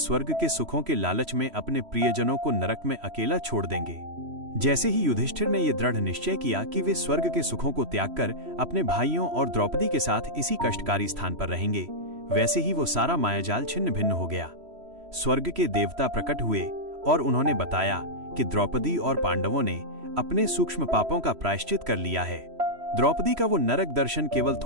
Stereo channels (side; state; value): left; late; 3.1 ms